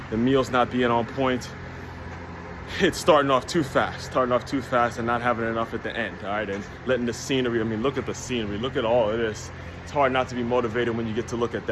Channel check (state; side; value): identical; both; correlation 1.00